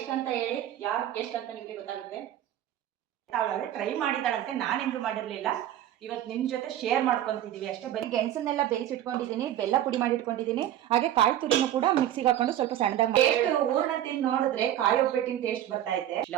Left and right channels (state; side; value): quieter; left; 11.9 dB